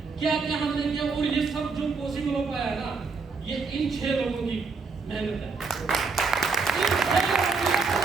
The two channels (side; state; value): left; quieter; 4.6 dB